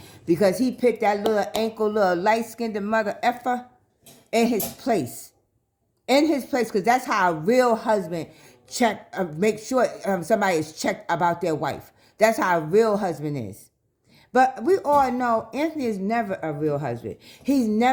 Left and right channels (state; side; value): identical; both; correlation 1.00